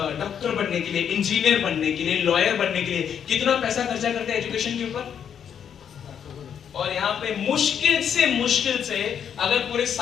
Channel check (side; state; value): right; quieter; 8.3 dB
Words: डॉक्टर बनने के लिए, इंजीनियर बनने के लिए, लॉयर बनने के लिए। कितना पैसा खर्चा करते हैं एजुकेशन के ऊपर। और यहाँ पे मुश्किल से अगर पूरे